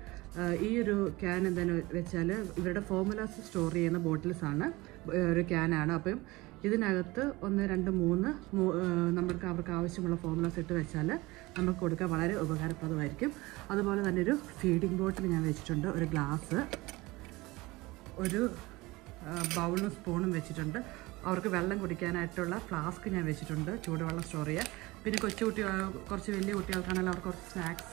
ഈ ഒരു ക്യാൻ എന്താണെന്ന് വെച്ചാൽ ഇവരുടെ ഫോർമുലാസ് സ്റ്റോർ ചെയ്യുന്ന ബോട്ടിൽസാണ്, ഒരു ക്യാനാണ്. അപ്പം ഇതിനകത്ത് 1, 2, 3 അവർക്ക് ആവശ്യമുള്ള ഫോർമുലാസ് ഇട്ട് വെച്ചാൽ നമുക്ക് കൊടുക്കാൻ വളരെ ഉപകാരപ്രദമായിരിക്കും. അതുപോലെ തന്നെ ഒരു ഫീഡിംഗ് ബോട്ടിൽ ഞാൻ വെച്ചിട്ടുണ്ട്. ഒരു ഗ്ലാസ്, ഒരു ബൗളും സ്പൂണും വെച്ചിട്ടുണ്ട്. അവർക്ക് വെള്ളം കുടിക്കാനായിട്ടുള്ള ഫ്ലാസ്ക് ഞാൻ വെച്ചിട്ടുണ്ട്, ചൂടുവെള്ളം സ്റ്റോർ ചെയ്യുക. പിന്നെ കുറച്ച് വലിയ കുട്ടികൾക്കാണെങ്കിൽ അവർക്ക് കുറച്ച്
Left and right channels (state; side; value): quieter; left; 21.4 dB